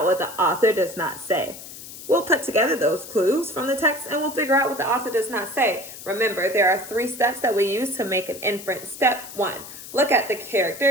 what the author does not say. We'll put together those clues from the text and we'll figure out what the author does not say. Remember, there are 3 steps that we use to make an inference. Step 1, look at the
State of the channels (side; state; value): left; noise; hiss, 14 dB below the sound